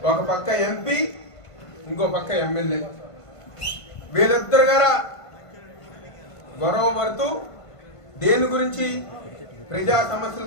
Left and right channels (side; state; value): right; late; 1.5 ms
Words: ఒక పక్క ఎంపీ, ఇంకో పక్క ఎమ్మెల్యే, వీళ్ళిద్దరు గారా గొడవ పడుతూ దేని గురించి, ప్రజా సమస్యల